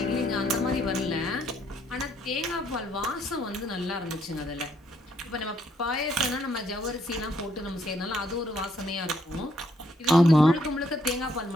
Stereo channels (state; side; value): normal; both; correlation 0.71